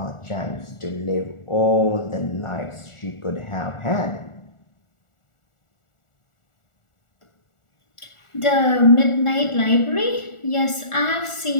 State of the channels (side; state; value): right; late; 1.4 ms